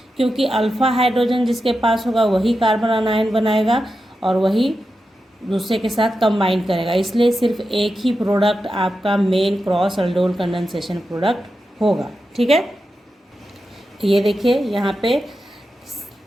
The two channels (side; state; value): both; normal; correlation 0.90